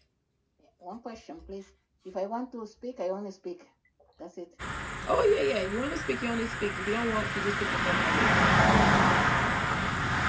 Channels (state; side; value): identical; both; correlation 1.00